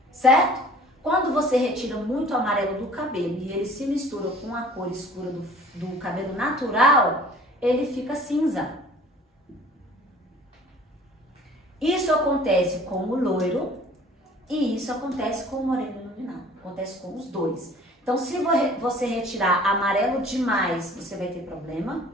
certo? Quando você retira muito o amarelo do cabelo e ele se mistura com a cor escura do cabelo natural, ele fica cinza. Isso acontece com o loiro e isso acontece com o moreno iluminado. Acontece com os dois. Então, se você retirar amarelo demais, você vai ter problema.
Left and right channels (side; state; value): both; normal; correlation 0.49